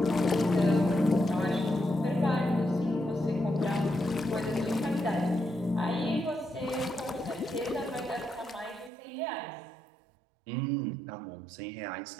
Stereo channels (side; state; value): left; drops out; at 8.9 s